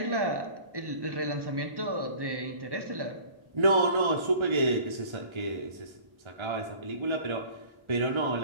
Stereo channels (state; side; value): late; left; 1.3 ms